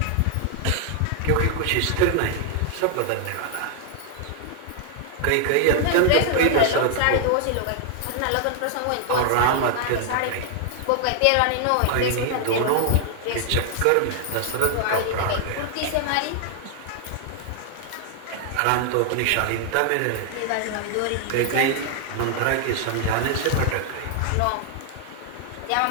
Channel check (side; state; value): both; different; correlation 0.00